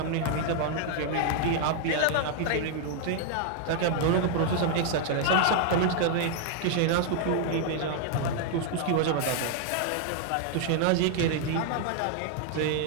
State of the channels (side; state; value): both; different; correlation 0.00